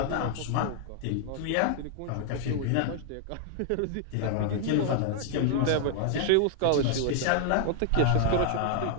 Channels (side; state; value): both; different; correlation 0.00